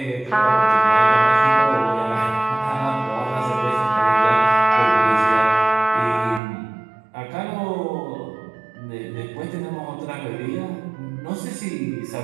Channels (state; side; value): drops out; left; at 6.4 s